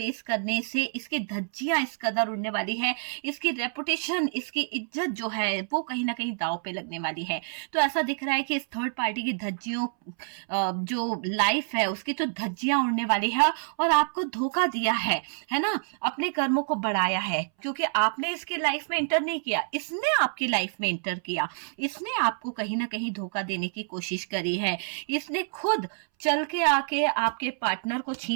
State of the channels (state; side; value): silent; left; 60 dB below the other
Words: करने से इसकी धज्जियां इस कदर उड़ने वाली है, इसकी रेपुटेशन, इसकी इज्जत जो है वो कहीं ना कहीं दांव पे लगने वाली है। तो ऐसा दिख रहा है कि इस थर्ड पार्टी की धज्जियों जो लाइफ है उसकी तो धज्जियां उड़ने वाली है, और आपको धोखा दिया है ना, अपने कर्मों को बढ़ाया है, क्योंकि आपने इसकी लाइफ में इंटर नहीं किया, इसने आपकी लाइफ में इंटर किया। इसने आपको कहीं ना कहीं धोखा देने की कोशिश करी है। इसने खुद चल के आके आपके पार्टनर को